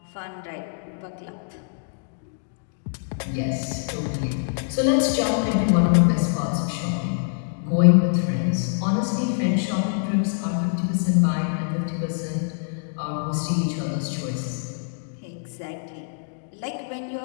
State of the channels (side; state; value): right; silent; digital silence